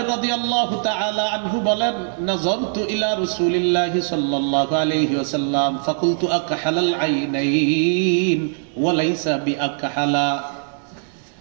রাদিয়াল্লাহু তাআলা আনহু বলেন নাযারতু ইলা রাসূলিল্লাহি সাল্লাল্লাহু আলাইহি ওয়াসাল্লাম ফাকুলতু আকহালাল আইনাইন ওয়া লাইসা বিআকহালা,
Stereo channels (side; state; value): left; silent; digital silence